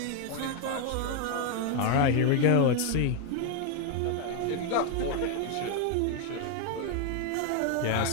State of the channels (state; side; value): different; both; correlation 0.01